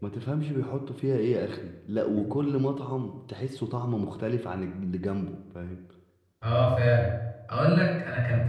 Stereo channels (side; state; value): both; identical; correlation 1.00